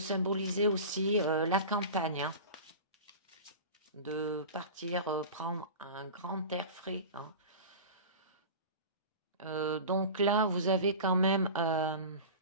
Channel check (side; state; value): both; inverted; correlation -0.33